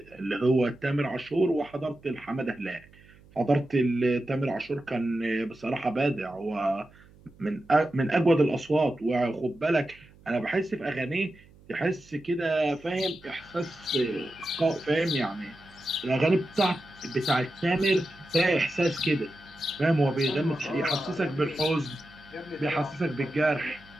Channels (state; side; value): noise; right; hum, 25 dB below the sound